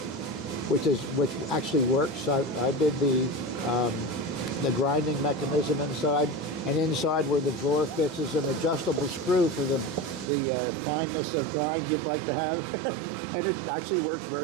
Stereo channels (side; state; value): left; drops out; at 10.3 s